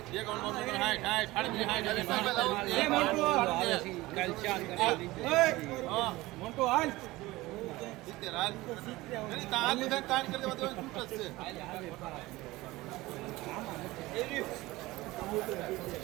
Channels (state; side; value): quieter; left; 19.5 dB